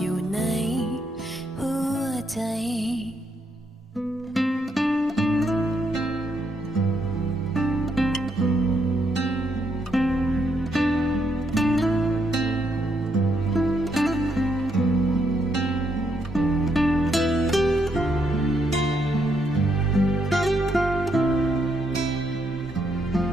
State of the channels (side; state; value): both; normal; correlation 0.77